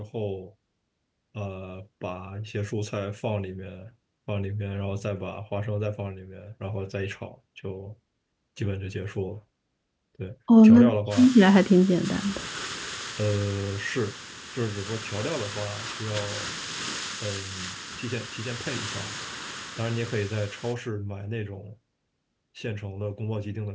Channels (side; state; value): both; identical; correlation 1.00